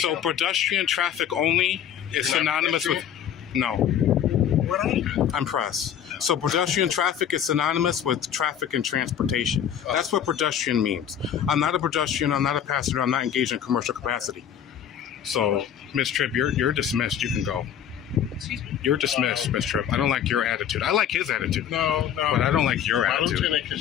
So down. pedestrian traffic only is Not synonymous with, no, What are you? I'm press. So pedestrian traffic is synonymous with traffic and transportation. That's what pedestrian means. I'm not a pedestrian, I'm not a passenger, I'm not engaged in commercial capacity. So, Miss Tripp, you're dismissed, you can go. Excuse me? You're dismissed, Miss Tripp. I don't like your attitude. I like his attitude. No. But I don't like your My attitude. lieutenant,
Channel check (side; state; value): right; quieter; 9.3 dB